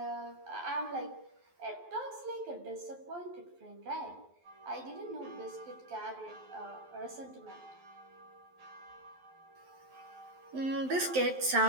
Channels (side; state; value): left; late; 12 ms